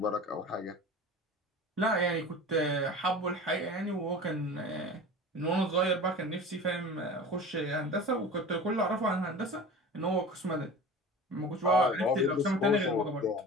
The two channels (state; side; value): normal; both; correlation 0.36